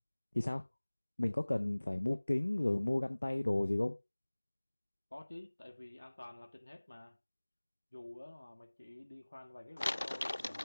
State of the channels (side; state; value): both; inverted; correlation -1.00